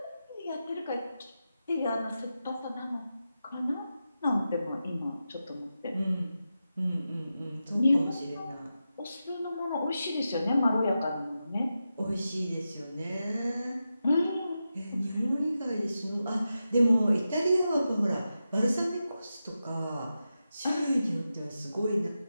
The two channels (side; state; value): both; inverted; correlation -0.90